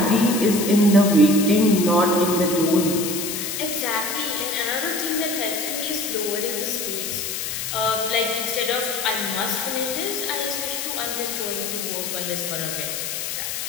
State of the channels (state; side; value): noise; left; hiss, 4 dB below the sound